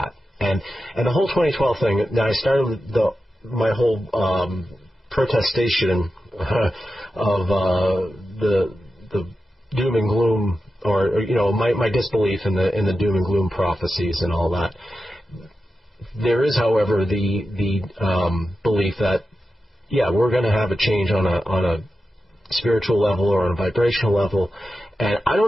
And the whole 2012 thing. Now I started my whole protestation of the doom and gloom. Or my disbelief in the doom and gloom prophecies and all that. There is, however, the belief that we're going to have a change on a spiritual level or on a vibrational level, and I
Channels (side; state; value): both; normal; correlation 0.91